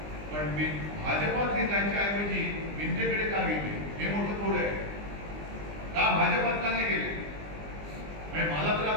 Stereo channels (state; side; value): late; left; 20 ms